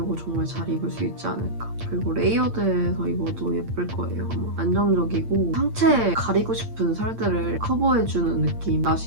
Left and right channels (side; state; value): left; late; 8.8 ms